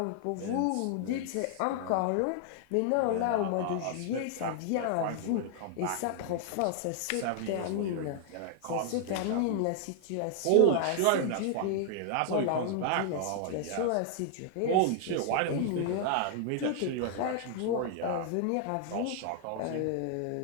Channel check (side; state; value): both; different; correlation 0.00